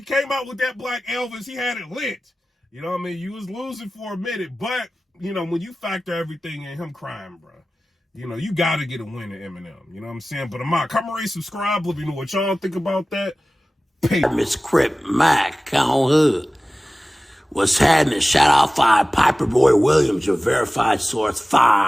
came out with that Black Elvis. He had it lit. You know what I mean? You was losing for a minute. But, when you factor everything in, him crying, bro, you got to get a win at Eminem. You know what I'm saying? But come and rate, subscribe. Let me know what y'all think about that. Peace. Miss Crip Mac on hood. What's happening? Shout out 5 PIPERBOY Williams, your verified source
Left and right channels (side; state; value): both; normal; correlation 0.97